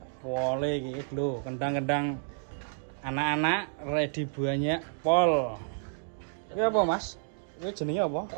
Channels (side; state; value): left; silent; digital silence